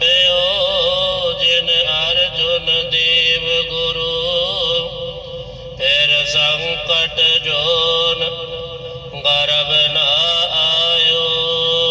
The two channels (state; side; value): identical; both; correlation 1.00